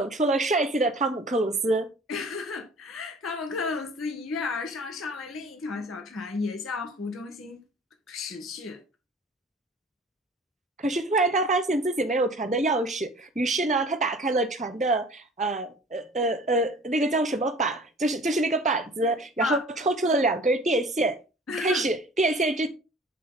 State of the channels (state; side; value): normal; both; correlation 0.46